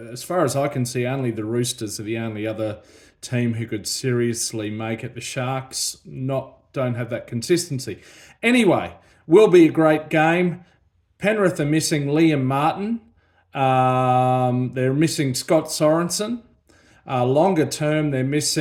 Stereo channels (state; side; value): identical; both; correlation 1.00